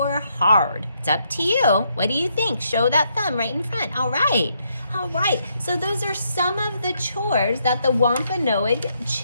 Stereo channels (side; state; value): both; inverted; correlation -0.76